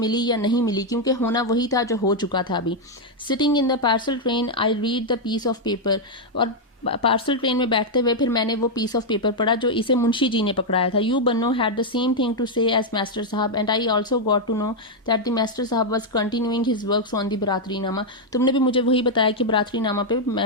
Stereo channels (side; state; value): both; normal; correlation -0.01